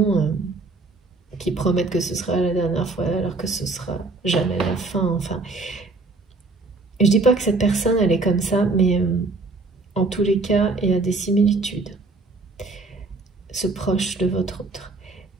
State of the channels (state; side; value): quieter; left; 3.5 dB